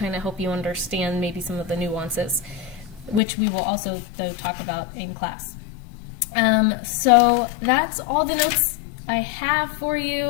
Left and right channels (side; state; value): right; drops out; at 3.2 s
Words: of help you understand maybe some of the nuances, which we will also, though, talk about in class. So that's all the notes I have for